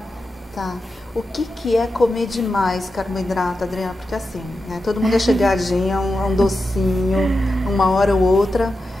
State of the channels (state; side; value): normal; both; correlation 0.90